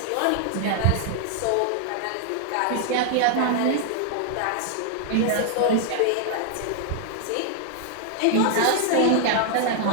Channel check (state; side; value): different; both; correlation 0.00